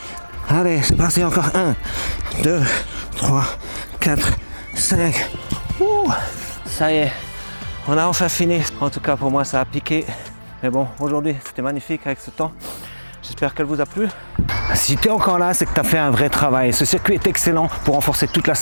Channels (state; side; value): inverted; both; correlation -1.00